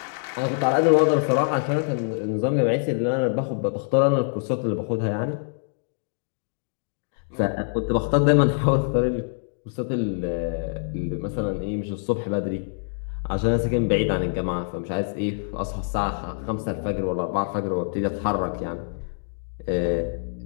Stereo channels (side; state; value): right; silent; digital silence